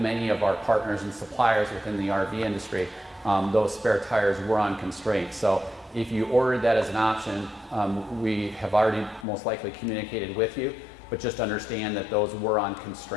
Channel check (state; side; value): drops out; right; at 9.2 s